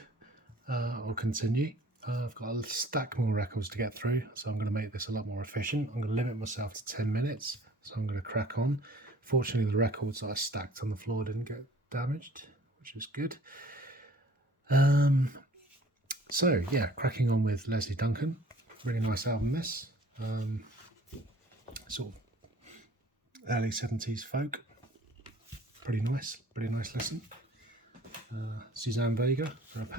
I'll continue. I've got a stack more records to get through, so I'm going to make this a lot more efficient. I'm going to limit myself to 10 minutes, so I'm going to crack on. Fortunately, the records that I stacked on the floor didn't get damaged, which is good. So, yeah, cracking on with Leslie Duncan. Really nice album, this. Sort of early 70s folk. Pretty nice listen. Suzanne Vega for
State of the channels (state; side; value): normal; both; correlation 0.53